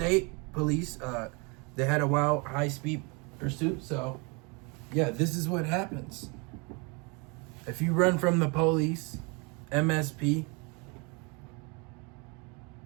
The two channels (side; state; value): left; quieter; 30.7 dB